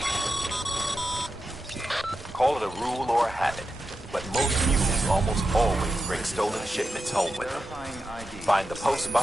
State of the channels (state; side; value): normal; both; correlation 0.89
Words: Call it a rule or a habit, but most mules almost always bring stolen shipments home with them. Find the post